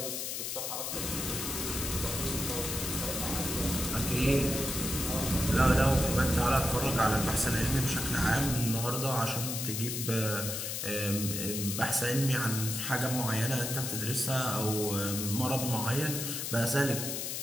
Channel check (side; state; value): left; noise; hiss, 3 dB below the sound